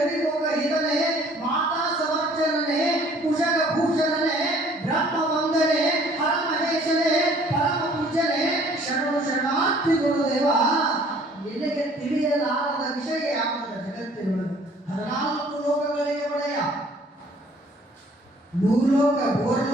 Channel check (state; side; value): normal; both; correlation 0.56